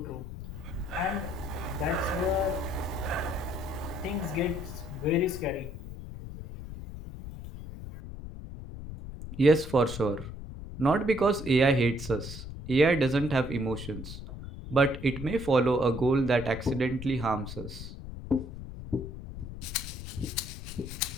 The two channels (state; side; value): noise; left; rumble, 10 dB below the sound